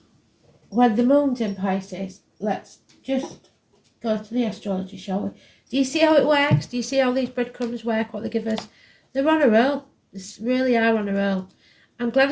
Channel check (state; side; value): identical; both; correlation 1.00